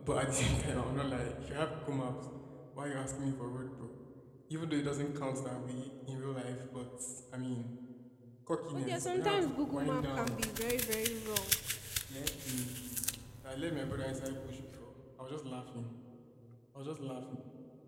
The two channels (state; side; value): identical; both; correlation 1.00